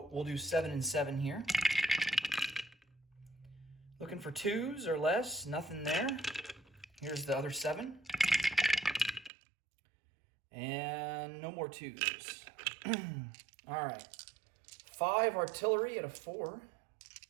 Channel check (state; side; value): drops out; left; at 9.3 s